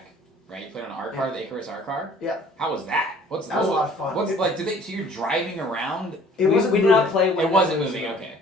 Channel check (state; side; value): normal; both; correlation 0.53